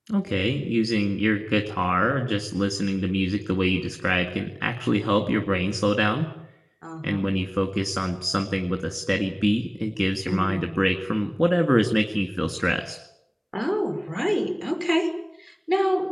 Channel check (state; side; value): identical; both; correlation 1.00